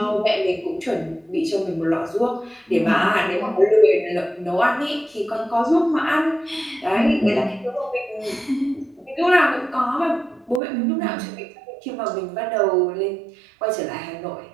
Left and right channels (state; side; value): drops out; left; at 10.6 s